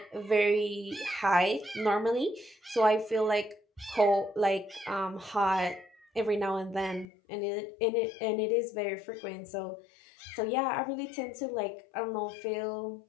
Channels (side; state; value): right; drops out; at 7.1 s